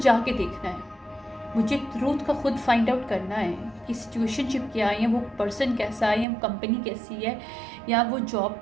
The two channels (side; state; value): left; drops out; at 6.2 s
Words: देखना है, मुझे ट्रूथ का खुद फाइंड आउट करना है कि सिचुएशनशिप क्या है, या वो पर्सन कैसा है, या वो कंपनी कैसी है, या वो जॉब